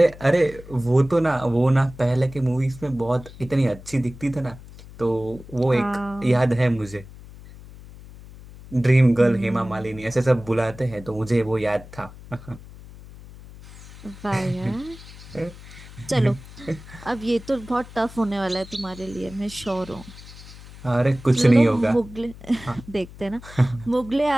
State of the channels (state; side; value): noise; left; hum, 17 dB below the sound